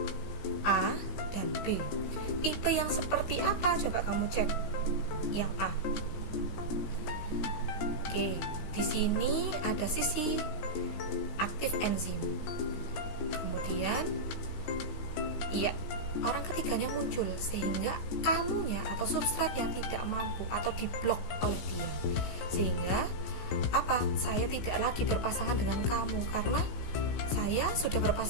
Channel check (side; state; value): right; late; 17 ms